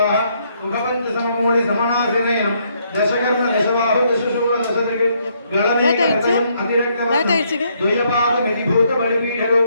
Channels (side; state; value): both; inverted; correlation -0.72